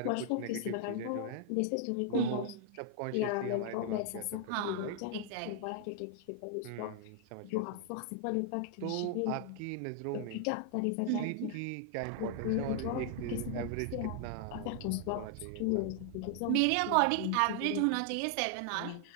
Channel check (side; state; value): both; different; correlation 0.00